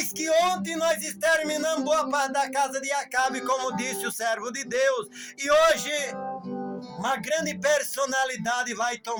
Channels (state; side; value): identical; both; correlation 1.00